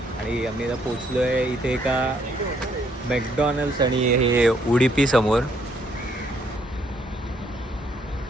आणि आम्ही आता पोचलो आहे इथे एका मॅकडॉनल्ड्स आणि हे उडुपी समोर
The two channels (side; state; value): both; normal; correlation 0.70